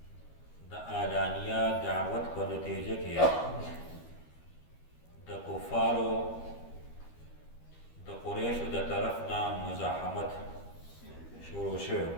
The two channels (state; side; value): late; right; 12 ms